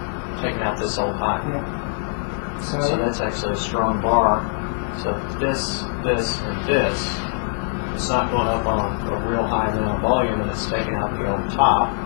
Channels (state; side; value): silent; right; 60 dB below the other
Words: taken out this old high. Yeah. So that's actually a strong bar. So this, and this, it's not going up on a real high amount of volume, and it's taking out the old top.